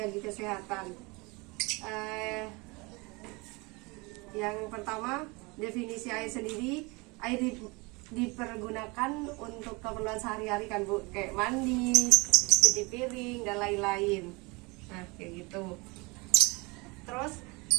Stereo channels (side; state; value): left; quieter; 26.7 dB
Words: kesehatan. Yang pertama, definisi air sendiri. Air dipergunakan untuk keperluan sehari-hari kan Bu, kayak mandi, cuci piring dan lain-lain. Nah kayak gitu. Terus